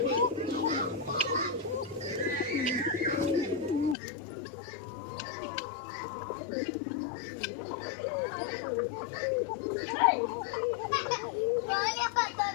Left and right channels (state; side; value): drops out; right; at 4.0 s